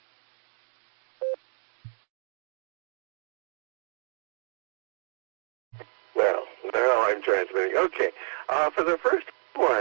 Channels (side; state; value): left; silent; 58 dB below the other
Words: Well, now I'm transmitting. Okay. For the first